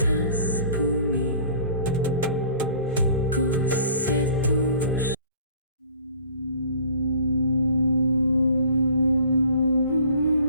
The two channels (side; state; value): both; inverted; correlation -0.51